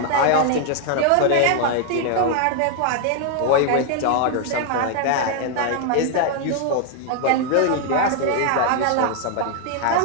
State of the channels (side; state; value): both; different; correlation 0.00